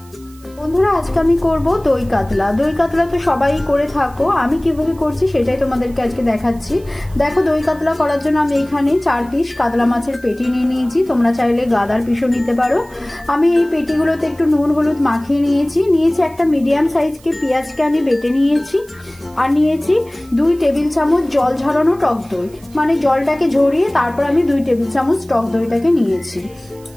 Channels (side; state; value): right; noise; hiss, 26 dB below the sound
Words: বন্ধুরা, আজকে আমি করব দই কাতলা। দই কাতলা তো সবাই করে থাকো, আমি কিভাবে করছি সেটাই তোমাদেরকে আজকে দেখাচ্ছি। দেখো, দই কাতলা করার জন্য আমি এখানে 4 পিস কাতলা মাছের পেটি নিয়ে নিয়েছি, তোমরা চাইলে গাদার পিসও নিতে পারো। আমি এই পেটিগুলোতে একটু নুন হলুদ মাখিয়ে নিয়েছি। একটা মিডিয়াম সাইজকে পেঁয়াজকে আমি বেটে নিয়েছি, আর নিয়েছি 2 টেবিল চামচ জল ঝরানো টক দই, মানে জলটাকে ঝরিয়ে তারপর আমি 2 টেবিল চামচ টক দইটাকে নিয়েছি।